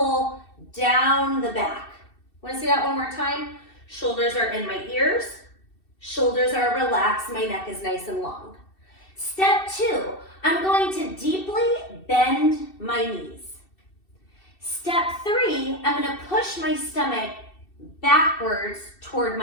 down the back. Wanna see that one more time? Shoulders are in my ears, shoulders are relaxed, my neck is nice and long. Step two, I'm going to deeply bend my knees. Step three, I'm gonna push my stomach backwards toward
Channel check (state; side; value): late; right; 2.7 ms